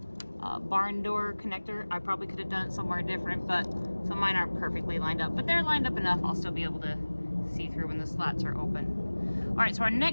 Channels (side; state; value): both; inverted; correlation -1.00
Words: barn door connector. I probably could have done it somewhere different, but so mine aren't perfectly lined up, but they're lined up enough. I'll still be able to see through when the slats are open. All right, so our